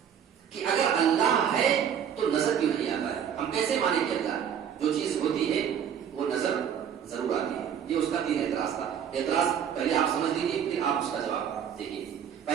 کہ اگر اللہ ہے تو نظر کیوں نہیں آتا ہے؟ ہم کیسے مانیں کہ اللہ جو چیز ہوتی ہے وہ نظر ضرور آتی ہے. یہ اس کا 3 اعتراض تھا. اعتراض پہلے آپ سمجھ لیجیے، پھر آپ اس کا جواب دیکھیے.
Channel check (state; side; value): quieter; left; 8.5 dB